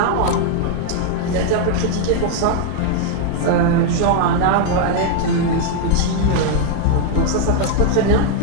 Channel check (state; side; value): different; both; correlation 0.00